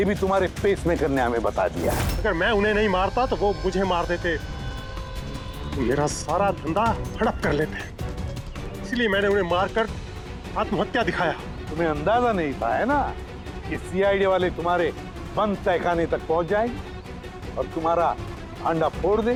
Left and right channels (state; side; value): identical; both; correlation 1.00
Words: भी तुम्हारे पेसमेकर ने हमें बता दिया। अगर मैं उन्हें नहीं मारता तो वो मुझे मार देते, मेरा सारा धंधा हड़प कर लेते। इसलिए मैंने उन्हें मारकर आत्महत्या दिखाया। तुम्हें अंदाजा नहीं था है ना कि सीआईडी वाले तुम्हारे बंद तहखाने तक पहुंच जाएंगे और तुम्हारा अंडा फोड़